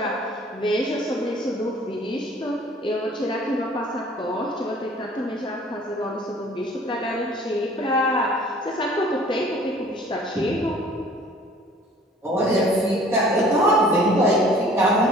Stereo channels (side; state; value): both; normal; correlation 0.51